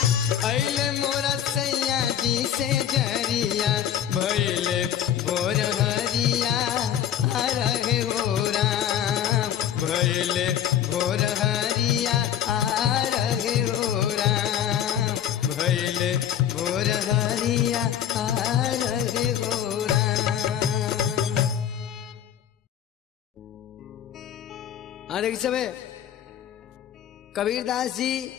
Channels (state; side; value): quieter; right; 10.1 dB